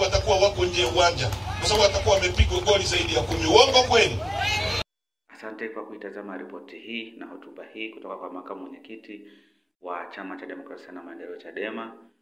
watakuwa wako nje uwanja, kwa sababu watakuwa wamepigwa goli zaidi ya 10. Uongo kweli? Asante kwa kuitazama ripoti hii na hotuba hii kutoka kwa makamu mwenyekiti wa Chama cha Demokrasia na Maendeleo Chadema,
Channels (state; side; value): identical; both; correlation 1.00